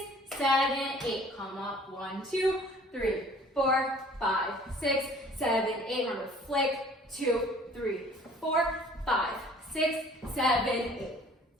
7, 8. Come up. 1, 2, 3, 4, 5, 6, 7, 8. Remember, flick. 2, 3, 4, 5, 6, 7, 8.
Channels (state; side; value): normal; both; correlation 0.52